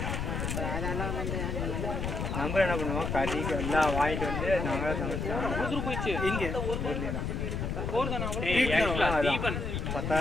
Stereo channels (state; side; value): noise; left; rumble, 2 dB below the sound